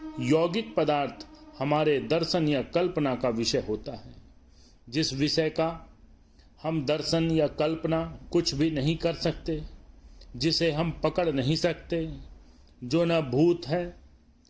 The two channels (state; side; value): identical; both; correlation 1.00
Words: यौगिक पदार्थ हमारे दर्शन या कल्पना का विषय होता है। जिस विषय का हम दर्शन या कल्पना कुछ भी नहीं कर सकते, जिसे हम पकड़ नहीं सकते, जो न भूत है